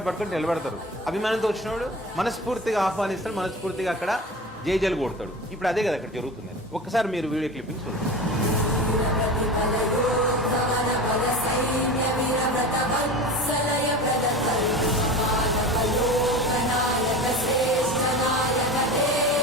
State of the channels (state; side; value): normal; both; correlation 0.32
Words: పట్టుకొని నిలబెడతారు. అభిమానంతో వచ్చినవాడు మనస్ఫూర్తిగా ఆహ్వానిస్తాడు, మనస్ఫూర్తిగా అక్కడ జైజలు కొడతాడు. ఇప్పుడు అదే కదా అక్కడ జరుగుతుంది. ఒక్కసారి మీరు వీడియో క్లిప్పింగ్ చూడండి.